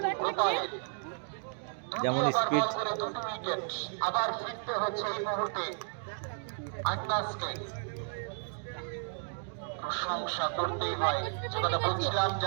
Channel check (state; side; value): silent; left; digital silence